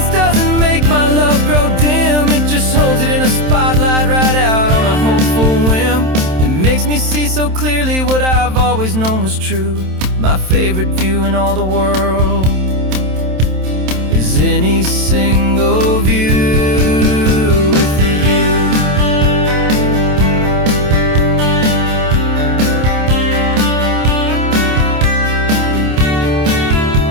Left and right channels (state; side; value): late; left; 27 ms